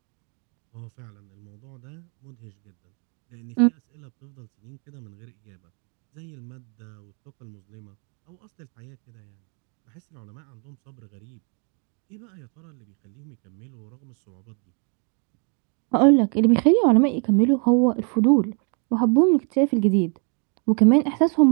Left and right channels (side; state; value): left; quieter; 38.9 dB